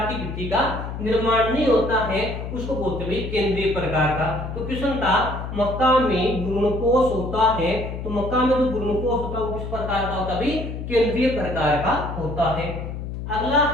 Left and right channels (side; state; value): left; noise; hum, 7 dB below the sound